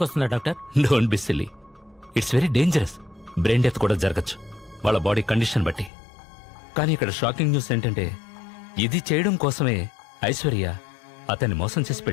doctor? Don't be silly. It's very dangerous. Brain death కూడా జరగచ్చు వాళ్ళ బాడీ కండిషన్ బట్టి. కానీ ఇక్కడ షాకింగ్ న్యూస్ ఏంటంటే ఇది చేయడం కోసమే ఐశ్వర్య అతన్ని మోసం చేసి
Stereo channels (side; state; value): right; drops out; at 5.9 s